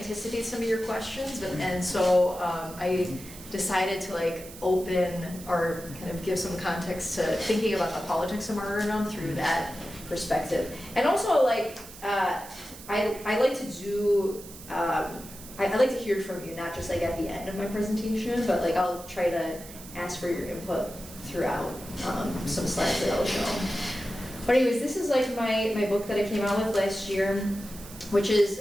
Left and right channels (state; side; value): noise; right; hiss, 16 dB below the sound